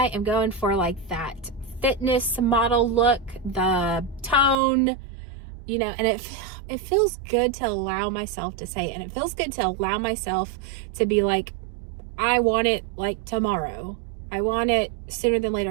am going for like that fitness model look, the tone, you know, and it feels good to allow myself to say it. And it feels good to allow myself to be like, I want it like tomorrow. I want it sooner than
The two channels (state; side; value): drops out; left; at 4.6 s